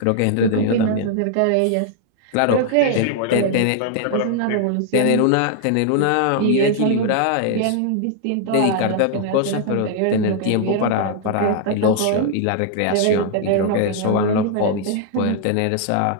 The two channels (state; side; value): different; both; correlation 0.00